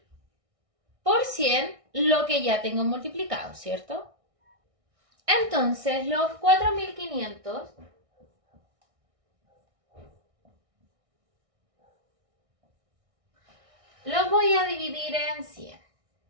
por 100 lo que ya tengo multiplicado, ¿cierto? Entonces los 4.500 los voy a dividir en 100.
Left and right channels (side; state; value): left; late; 1.6 ms